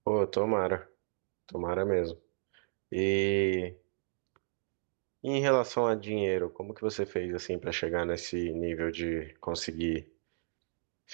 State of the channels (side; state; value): left; silent; digital silence